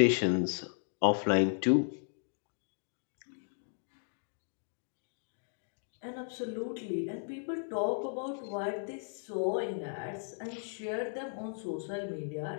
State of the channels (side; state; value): right; silent; digital silence